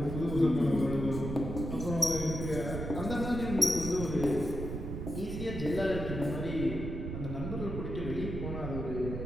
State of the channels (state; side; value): noise; right; rumble, 5 dB below the sound